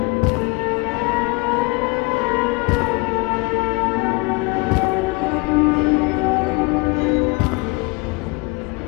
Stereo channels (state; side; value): quieter; right; 27.2 dB